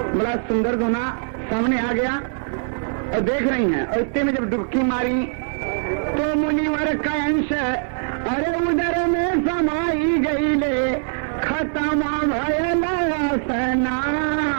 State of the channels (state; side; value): silent; left; digital silence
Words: बड़ा सुंदर दोना सामने आ गया और देख रही हैं, और इतने में जब डुबकी मारी तो मुनिवर का अंश अरे उधर में समाई गई ले, खत्म भयला